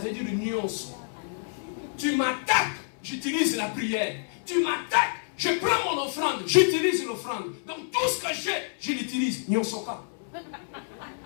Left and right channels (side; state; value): right; silent; 59 dB below the other